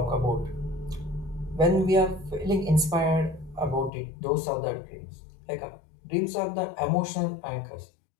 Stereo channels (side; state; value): right; drops out; at 3.9 s